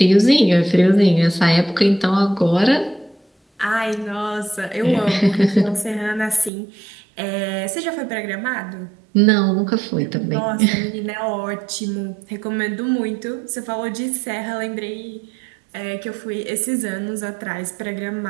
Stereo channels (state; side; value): drops out; left; at 6.5 s